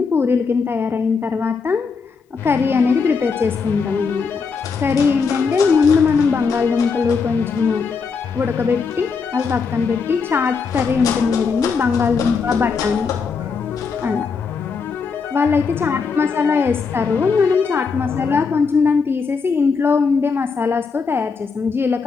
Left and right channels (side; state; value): right; quieter; 5.2 dB